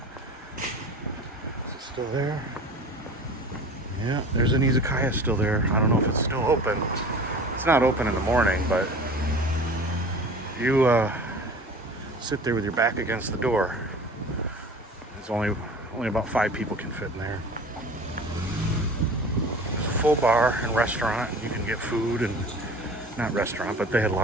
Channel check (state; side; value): normal; both; correlation 0.40